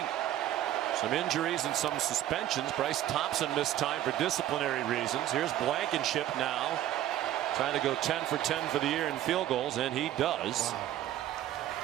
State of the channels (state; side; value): quieter; left; 12.8 dB